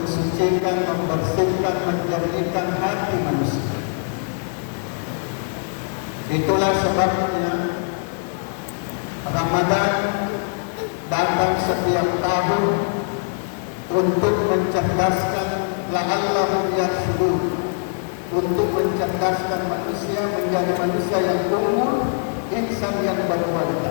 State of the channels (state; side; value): silent; right; digital silence